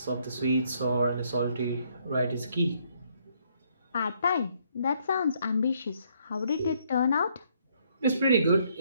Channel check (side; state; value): both; inverted; correlation -0.69